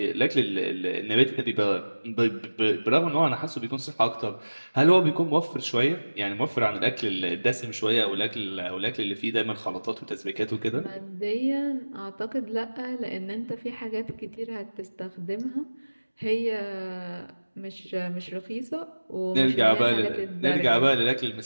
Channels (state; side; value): inverted; both; correlation -1.00